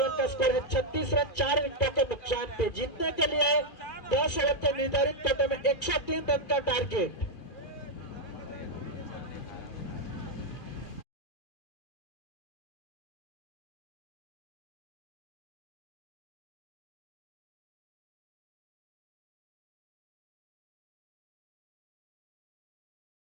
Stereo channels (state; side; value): late; right; 2.5 ms